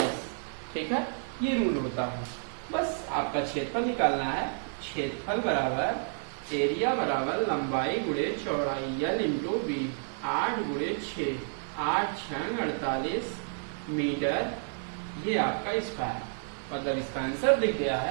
ठीक है, ये रूल होता है। बस आपका क्षेत्रफल निकालना है। क्षेत्रफल बराबर एरिया बराबर लंबाई गुणे चौड़ाई, L इंटू बी, 8 गुणे 6, 8 6 48 मीटर, ये आपका स्क्वायर, मतलब इसका आंसर दिख गया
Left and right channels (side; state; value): left; silent; 58 dB below the other